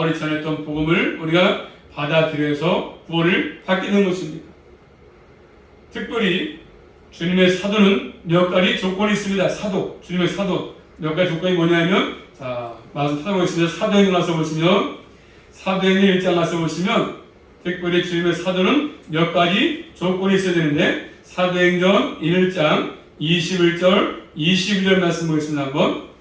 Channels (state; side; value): identical; both; correlation 1.00